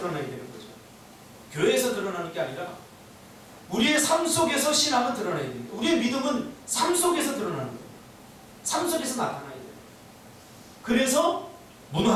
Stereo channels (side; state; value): both; identical; correlation 1.00